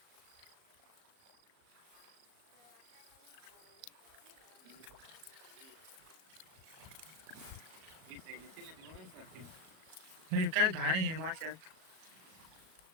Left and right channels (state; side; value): late; left; 38 ms